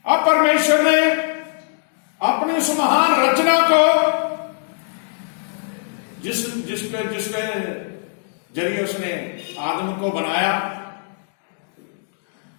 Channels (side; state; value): right; silent; digital silence